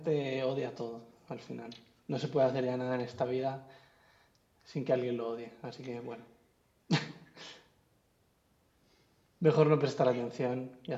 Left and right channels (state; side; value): identical; both; correlation 1.00